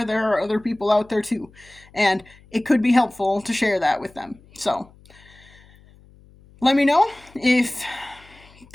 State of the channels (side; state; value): left; noise; hum, 26 dB below the sound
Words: there are other people out there too, and it could be helpful to share that with them. So, let me know if